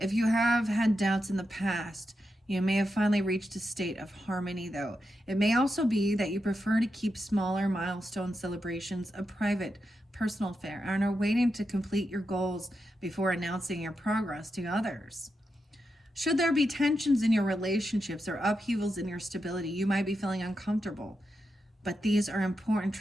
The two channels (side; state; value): both; normal; correlation 0.87